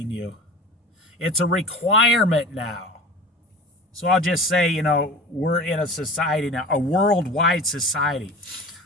you. It's a requirement now. So I'll just say, we're in a society now, a worldwide society.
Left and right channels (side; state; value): both; normal; correlation 0.37